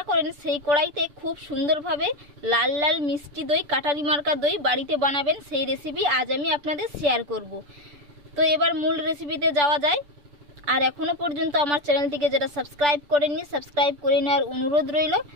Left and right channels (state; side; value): late; left; 6.8 ms